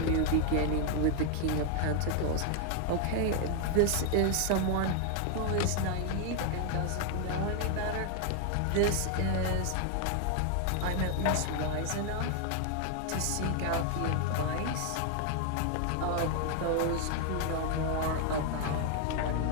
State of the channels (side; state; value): both; different; correlation 0.00